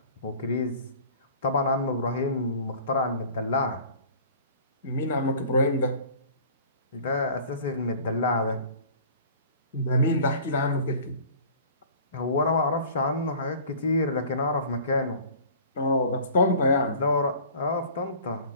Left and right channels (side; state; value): both; inverted; correlation -0.45